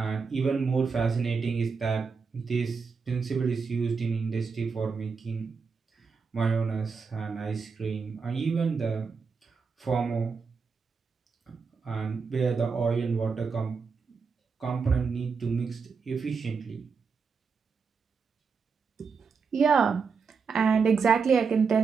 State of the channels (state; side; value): quieter; left; 5.3 dB